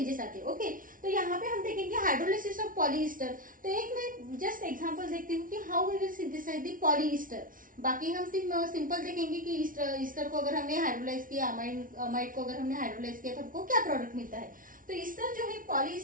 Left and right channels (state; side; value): late; left; 0.39 ms